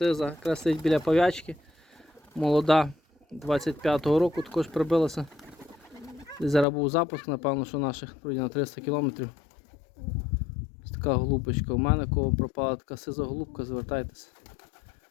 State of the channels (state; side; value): drops out; right; at 6.7 s